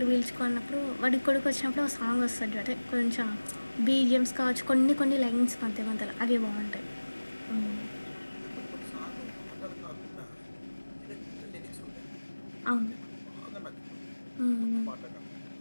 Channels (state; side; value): inverted; both; correlation -1.00